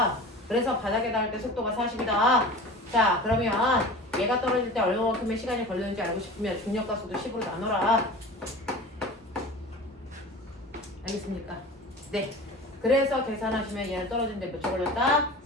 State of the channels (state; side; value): normal; both; correlation 0.37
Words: 그래서 바닥에 닿을 때 속도가 40이다. 자, 그러면 얘가 떨어질 때 얼마만큼의 시간이 걸리는지 알고 싶으면 중력과 속도 10으로 나눠라. 알겠습니까? 네. 그래서 계산하시면 얘는 떨어지는데 몇 초 걸렸다?